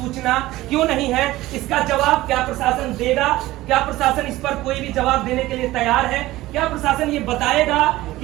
क्यों नहीं है? इसका जवाब क्या प्रशासन देगा? क्या प्रशासन इस पर कोई भी जवाब देने के लिए तैयार है? क्या प्रशासन ये बताएगा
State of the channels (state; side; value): quieter; left; 17.2 dB